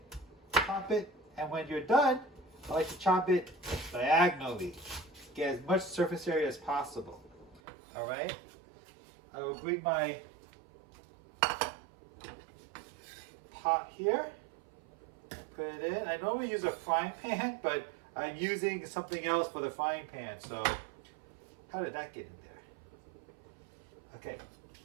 and when you're done, I like to chop it diagonally. Get as much surface area as possible. All right. I will bring my pot here, put it in. I normally use a frying pan, but I'm using something else for the frying pan. So how did that get in there? Okay.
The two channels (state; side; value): drops out; left; at 7.6 s